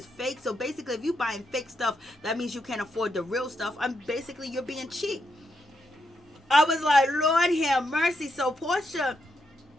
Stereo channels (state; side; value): normal; both; correlation 0.81